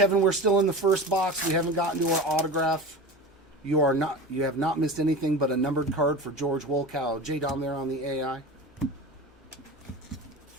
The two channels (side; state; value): both; normal; correlation 0.30